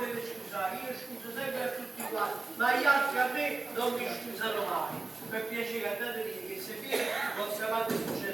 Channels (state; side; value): quieter; left; 3.3 dB